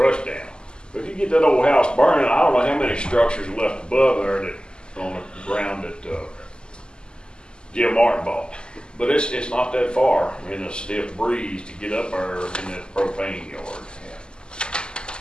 down. But if you get that old house burning, I don't know how many structures are left above there that on the ground that Jim Martin bought. But it's not that far in a stiff breeze to get up there in that propane yard.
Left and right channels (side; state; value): right; late; 0.048 ms